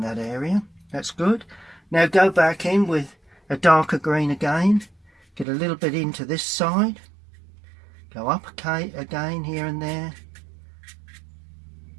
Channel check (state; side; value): drops out; left; at 5.5 s